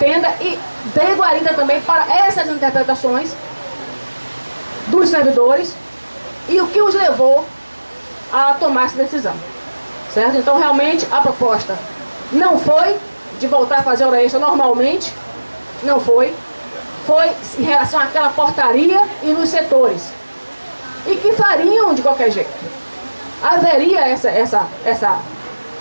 e dê guarida também para essas interpretações dos servidores e o que os levou a tomar essa decisão. Certo? Então, realmente, a proposta não foi de voltar a fazer hora extra normalmente, não foi. Foi em relação àquela portaria e nos setores. E que fariam de qualquer jeito. Haveria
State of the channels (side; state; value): both; inverted; correlation -1.00